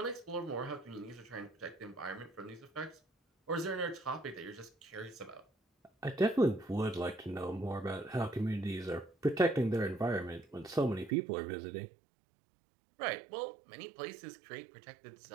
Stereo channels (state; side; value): drops out; left; at 11.1 s